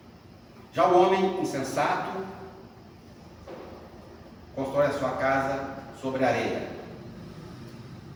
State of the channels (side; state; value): both; identical; correlation 1.00